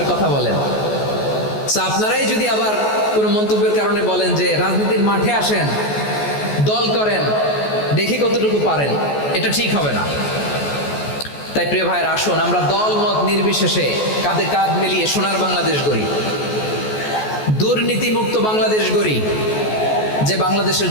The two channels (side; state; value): right; late; 14 ms